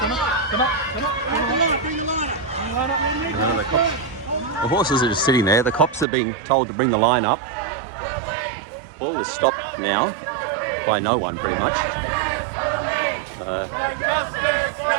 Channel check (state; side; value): drops out; left; at 6.1 s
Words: Come on. Bring the line up. The horses are just sitting there. The cops are being told to bring the line up. All is stopped now by no one, pretty much. I